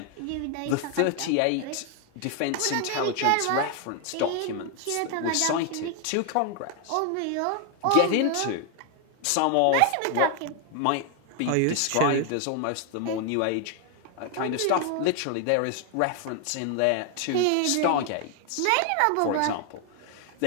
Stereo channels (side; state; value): both; different; correlation 0.00